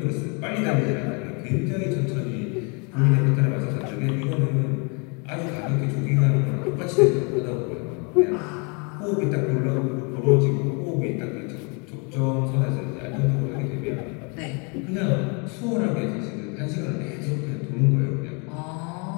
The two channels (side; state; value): right; quieter; 33.8 dB